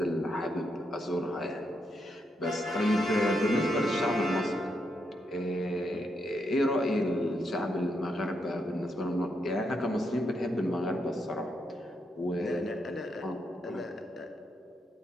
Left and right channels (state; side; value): normal; both; correlation 0.80